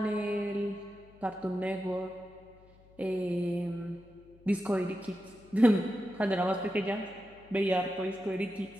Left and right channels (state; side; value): noise; left; hum, 26 dB below the sound